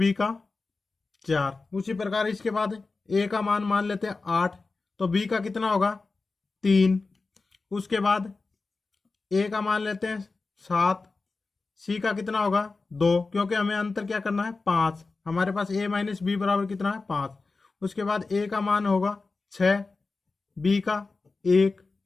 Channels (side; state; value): right; quieter; 3.9 dB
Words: का 4। उसी प्रकार इसके बाद a का मान लेते हैं 8, तो b का कितना होगा 3। उसके बाद a का मान लेते हैं 7, c का कितना होगा 2, क्योंकि हमें अंतर क्या करना है 5। हमारे पास a माइनस बी बराबर कितना है 5। उसके बाद a का मान होगा 6, b का 1,